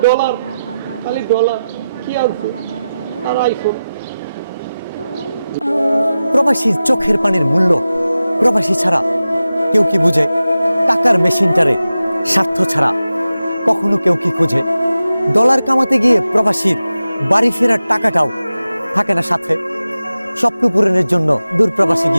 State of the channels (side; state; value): both; inverted; correlation -0.93